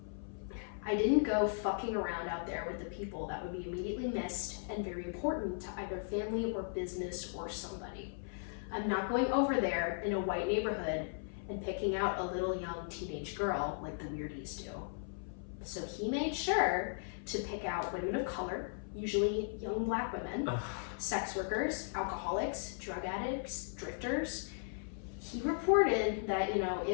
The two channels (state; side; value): silent; right; 53 dB below the other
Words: "I didn't go fucking around out there with the people that would be immediately missed and very important to either family or business or somebody. I'm not going over there in a white neighborhood and picking out a little young teenage girl like the weirdies do." So he made sure to pick out women of color, usually young black women, sex workers, alcoholics, drug addicts, drifters. He reported that, you know,